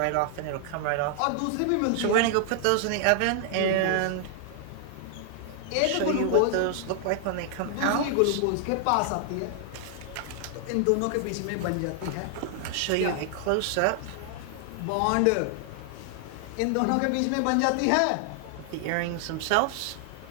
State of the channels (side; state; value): both; different; correlation 0.00